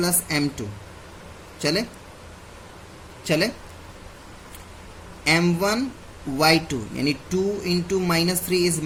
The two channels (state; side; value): identical; both; correlation 1.00